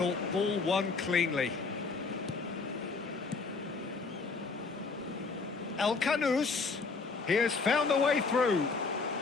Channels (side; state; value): right; quieter; 4.4 dB